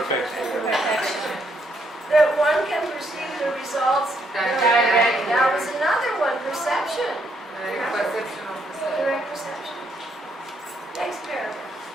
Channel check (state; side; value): normal; both; correlation 0.73